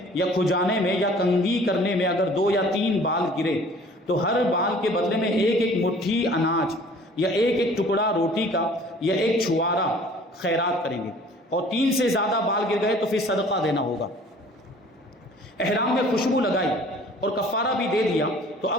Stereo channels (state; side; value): normal; both; correlation 0.51